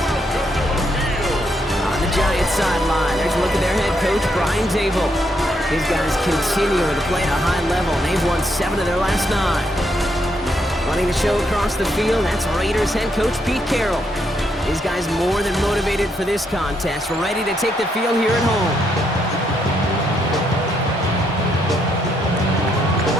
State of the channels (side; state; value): both; normal; correlation 0.76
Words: On the Giants sideline, there's a look at their head coach, Brian Dable. His guys continue to play at a high level. They've won 7 of their last 9. Running the show across the field, that's Raiders head coach Pete Carroll. These guys more than motivated for this contest. We're ready to take the field here at home.